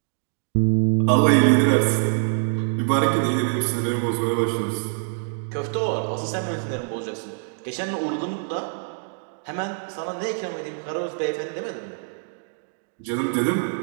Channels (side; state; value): left; silent; 61 dB below the other